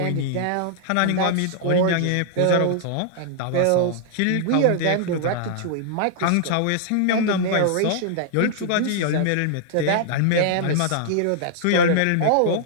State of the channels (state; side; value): different; both; correlation -0.01